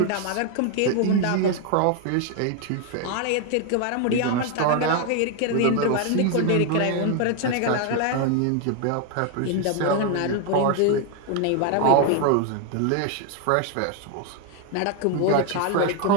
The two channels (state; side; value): different; both; correlation 0.01